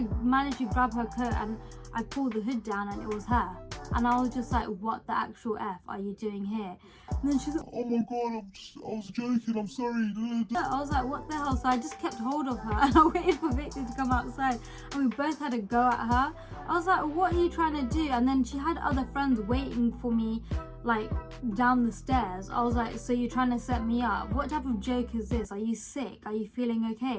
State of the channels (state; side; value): identical; both; correlation 1.00